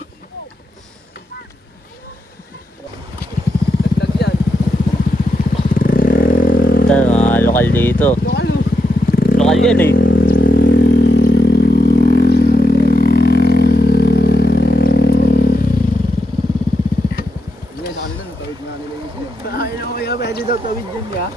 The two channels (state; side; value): normal; both; correlation 0.84